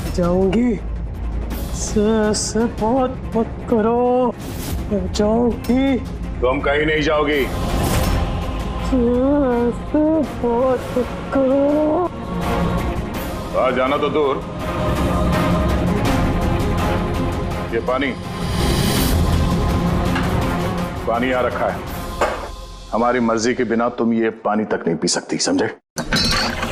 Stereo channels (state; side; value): identical; both; correlation 1.00